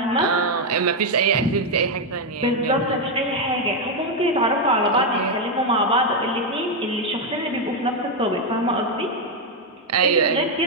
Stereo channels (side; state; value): both; normal; correlation 0.03